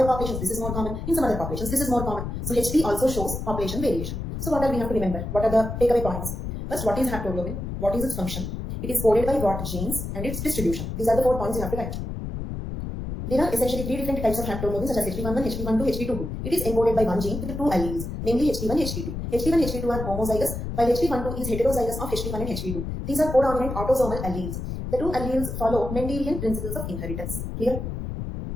populations this is more common, in some other populations this is more common. So HP also shows population variation. So what are we have to remember? What are the takeaway points? First, what is haptoglobin? What is its function? It is coded by what genes and its distribution. These are the 4 points you have to write. There are essentially 3 different types of haptoglobin such as HP11, HP12, HP22. It is encoded by one gene with 2 alleles, namely HP1, HP2. HP1 and HP2 are homozygous, while HP12 is heterozygous of HP1 and HP2. These are codominant autosomal alleles. The 2 alleles follow Mendelian principles of inheritance. Clear?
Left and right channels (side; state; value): left; noise; rumble, 5 dB below the sound